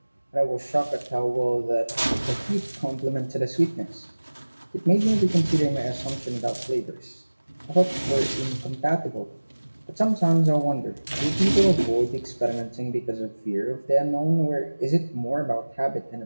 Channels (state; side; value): inverted; both; correlation -1.00